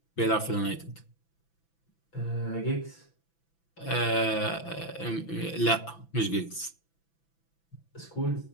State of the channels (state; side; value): late; right; 6.0 ms